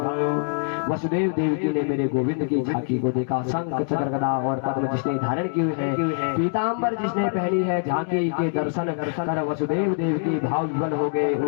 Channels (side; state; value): right; silent; digital silence